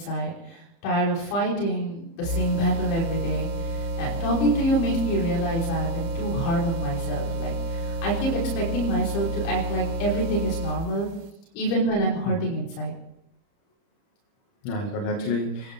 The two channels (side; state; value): right; late; 30 ms